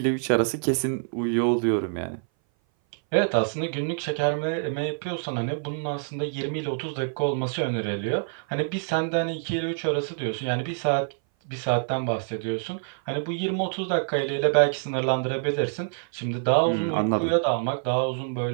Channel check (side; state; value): left; silent; 58 dB below the other